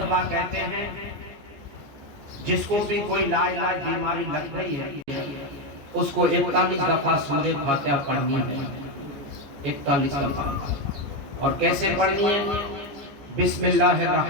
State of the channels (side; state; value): left; late; 14 ms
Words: कहते हैं जिसको भी कोई लाइलाज बीमारी लग गई है उसको 41 दफा सूरह फातिहा पढ़नी है, 41 दफा। और कैसे पढ़नी है?